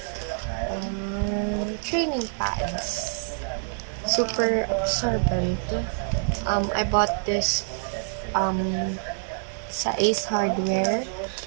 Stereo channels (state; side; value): silent; left; 61 dB below the other